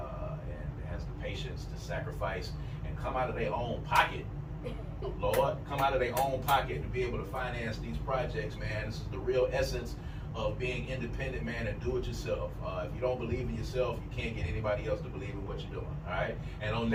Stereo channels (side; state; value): both; identical; correlation 1.00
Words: and has the patience to sacrifice and come out of their own pocket. Lord, come out of their own pocket to be able to finance these projects, man. This is the real essence of being independent, man, and do it yourself. If you don't believe in yourself, you can't get anybody else to believe in what you're doing, all right? And on